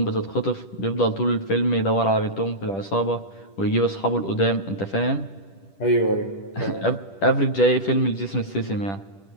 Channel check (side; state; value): right; late; 10 ms